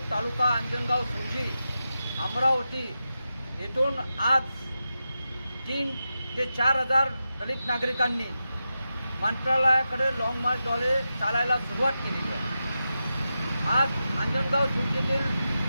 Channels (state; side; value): inverted; both; correlation -0.90